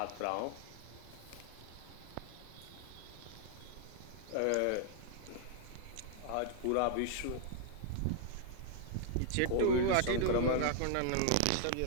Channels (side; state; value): both; different; correlation 0.00